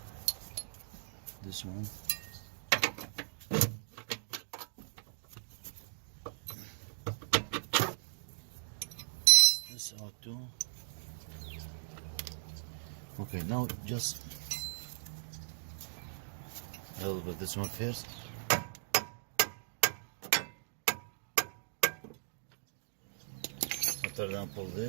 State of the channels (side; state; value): left; silent; digital silence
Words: this one, this out too. Okay, now just I will put this one first. After that, pull